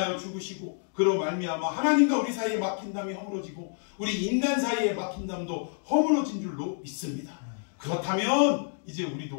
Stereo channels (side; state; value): right; silent; 59 dB below the other